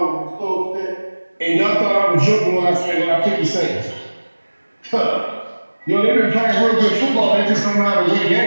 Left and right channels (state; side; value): inverted; both; correlation -1.00